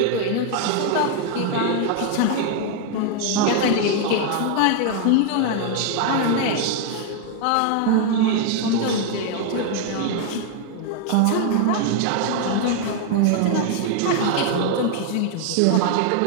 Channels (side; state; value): both; different; correlation 0.00